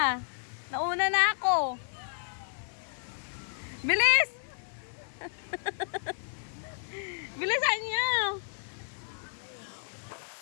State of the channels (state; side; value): silent; right; digital silence